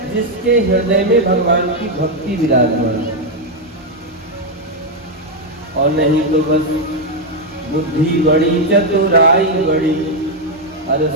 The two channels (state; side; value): normal; both; correlation 0.02